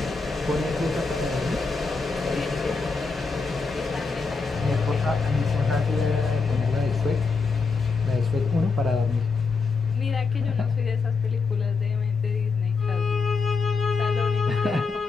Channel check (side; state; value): right; quieter; 4.6 dB